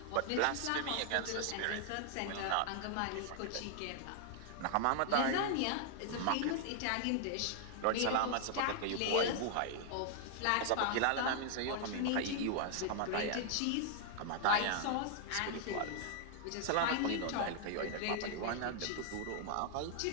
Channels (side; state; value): both; different; correlation 0.00